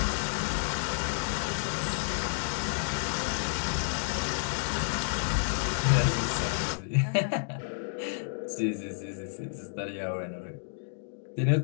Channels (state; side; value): silent; right; digital silence